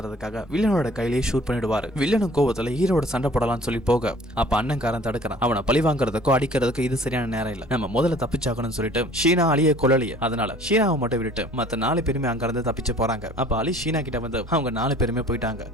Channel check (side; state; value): both; normal; correlation 0.51